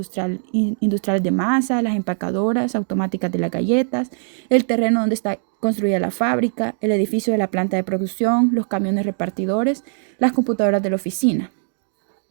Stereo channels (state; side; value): silent; left; digital silence